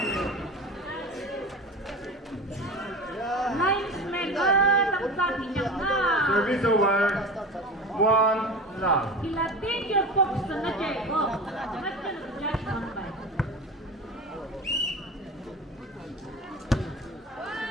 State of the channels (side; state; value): both; normal; correlation 0.31